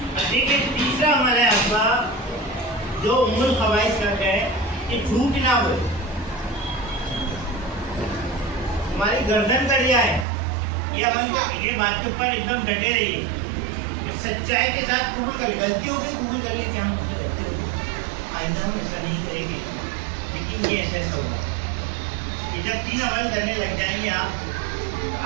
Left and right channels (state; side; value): drops out; left; at 10.2 s